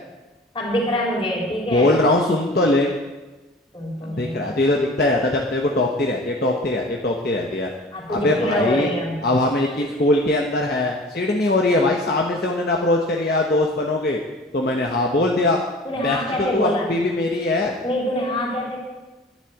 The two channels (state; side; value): normal; both; correlation 0.42